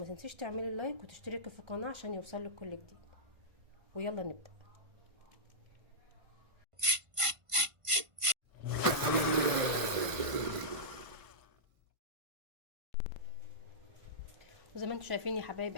تنسيش تعملي لايك وتشتركي في القناة عشان يوصلك كل جديد. ويلا نبدأ. وزي ما انتم شايفين يا حبايب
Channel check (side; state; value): left; late; 1.5 ms